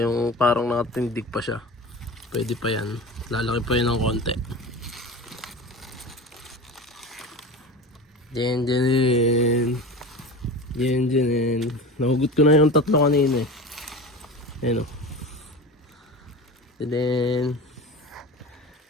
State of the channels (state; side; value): normal; both; correlation 0.32